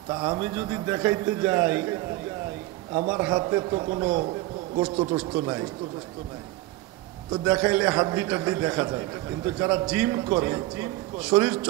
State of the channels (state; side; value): quieter; left; 17.6 dB